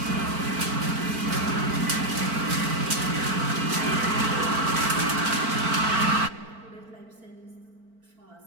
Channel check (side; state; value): left; late; 4.5 ms